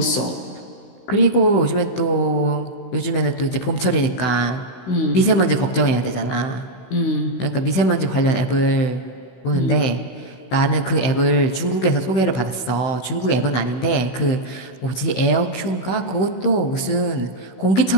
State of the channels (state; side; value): late; right; 16 ms